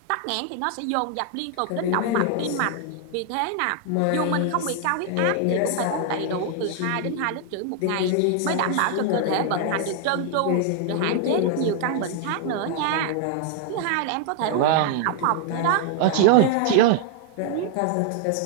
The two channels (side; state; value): both; different; correlation 0.00